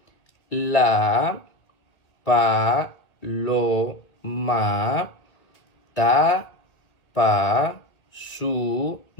La, paloma, tapa su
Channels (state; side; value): late; right; 1.9 ms